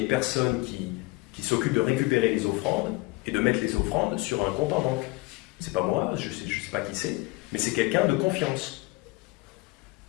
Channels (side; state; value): right; quieter; 22.8 dB